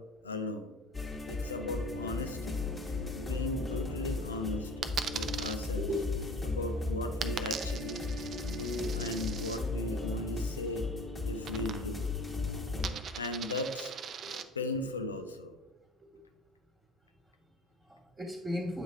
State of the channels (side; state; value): both; normal; correlation 0.43